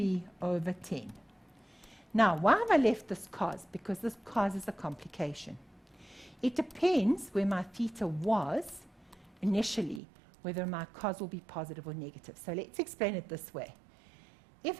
over 10. Now, why have I left this cos? Because this cos is a complication. It depends where my theta was initially, whether my cos will be positive or negative. So let's explain it this way. If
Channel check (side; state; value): left; drops out; at 10.0 s